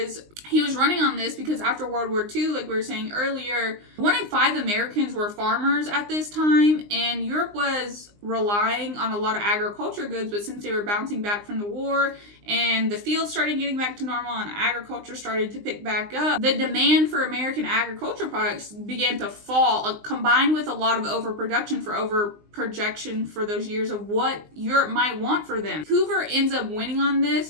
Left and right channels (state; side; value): late; left; 19 ms